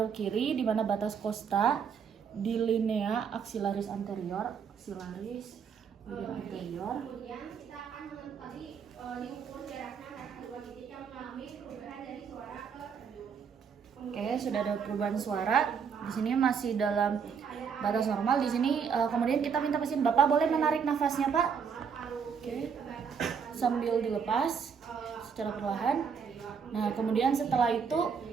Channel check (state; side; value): quieter; left; 6.7 dB